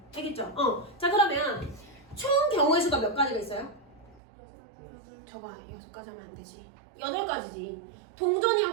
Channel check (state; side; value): drops out; left; at 4.2 s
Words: 알겠죠? 자, 그러면 총 경우의 수가 몇 가지가 있어요? 저거 6가지 하면 안 되지. 8가지지.